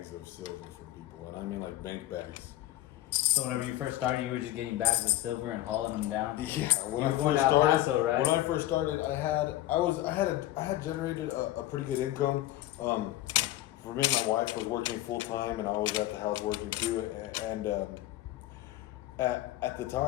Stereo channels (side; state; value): right; quieter; 15.0 dB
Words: of silver for people, and I mean like bank bags. So whenever you first started, you were just getting bags of silver and hauling them down. Yeah, when you I were going first to El started, Paso, right? When I first started, I had generated a pretty good income. For me, my wife was working full time, and I was at the house working too. And at the